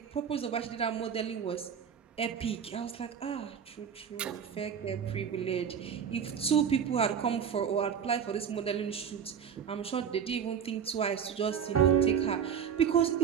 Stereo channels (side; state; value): left; quieter; 7.7 dB